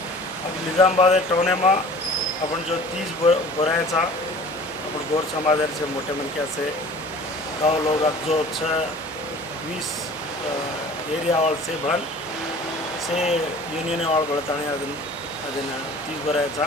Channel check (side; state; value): both; normal; correlation 0.45